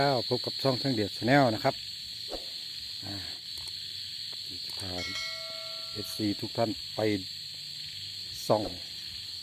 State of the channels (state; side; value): identical; both; correlation 1.00